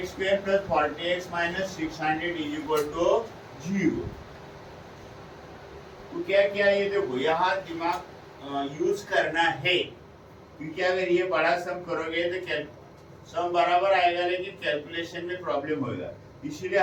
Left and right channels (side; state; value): both; identical; correlation 1.00